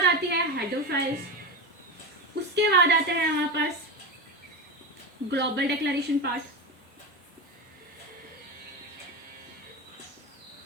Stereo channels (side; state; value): both; normal; correlation 0.19